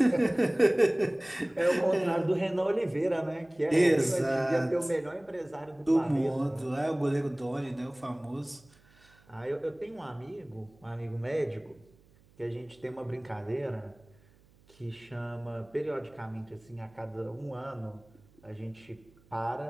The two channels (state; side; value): noise; right; hum, 29 dB below the sound